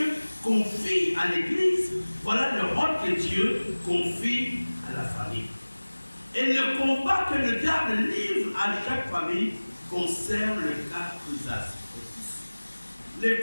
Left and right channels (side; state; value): both; inverted; correlation -1.00